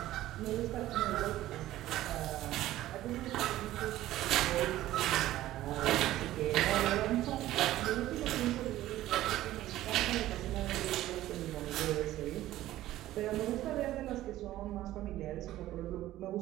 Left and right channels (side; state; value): left; quieter; 14.7 dB